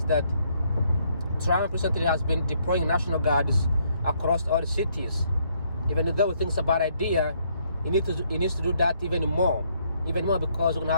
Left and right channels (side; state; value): both; inverted; correlation -0.70